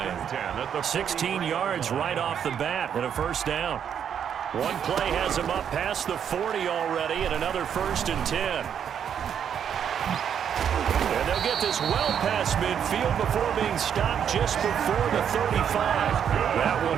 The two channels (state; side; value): quieter; left; 8.4 dB